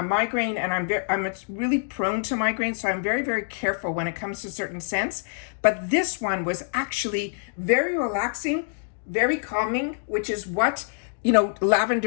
migraine, and I'm really prone to migraine, so I'm very, very careful when it comes to certain scents. But this one was actually very relaxing, very calming, which is what, you know,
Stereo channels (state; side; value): silent; right; digital silence